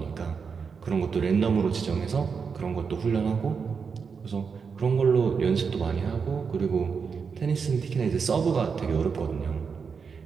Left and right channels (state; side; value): quieter; left; 5.8 dB